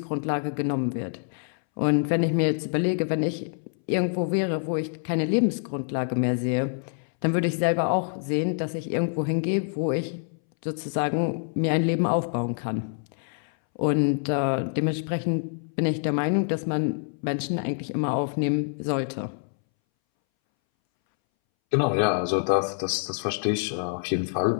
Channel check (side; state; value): right; silent; 61 dB below the other